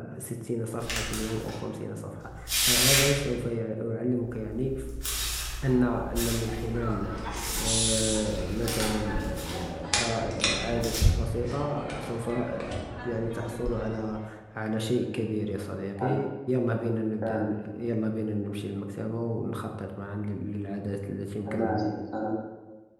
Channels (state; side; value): identical; both; correlation 1.00